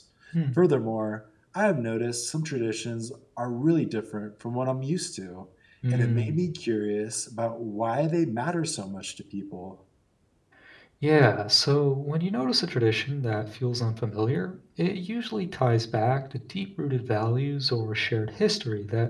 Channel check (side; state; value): both; identical; correlation 1.00